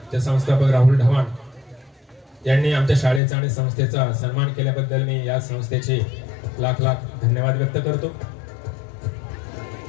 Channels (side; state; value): right; drops out; at 3.2 s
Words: संस्थापक राहुल ढवाण यांनी आमच्या शाळेचा आणि संस्थेचा सन्मान केल्याबद्दल मी या संस्थेचे लाख लाख धन्यवाद व्यक्त करतो.